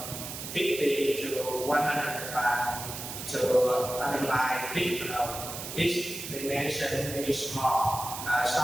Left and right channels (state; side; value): noise; right; hiss, 8 dB below the sound